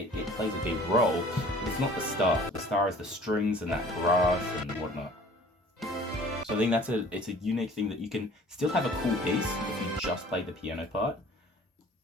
plays a big role, but it's not the star. The star is the strings and that brass and whatnot. So I think it's a unique thing that you can still have a cool piece if you just play the piano part,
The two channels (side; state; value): both; normal; correlation 0.50